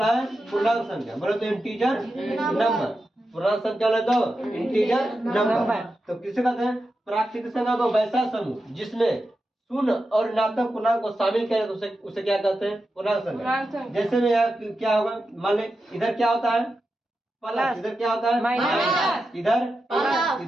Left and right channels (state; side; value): normal; both; correlation 0.90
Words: है पूर्णांक संख्या, बोलो तो इंटीजर नंबर, पूर्णांक संख्या बोले तो इंटीजर नंबर। तो किसे कहते हैं? प्राकृतिक संख्या को वैसा समूह जिसमें शून्य और ऋणात्मक पूर्णांक को शामिल किया तो उसे क्या कहते हैं? पूर्णांक संख्या। जैसे में यहाँ क्या होगा, मान ले इधर क्या होता है? प्लस, इधर क्या होता है? माइनस, इधर प्लस,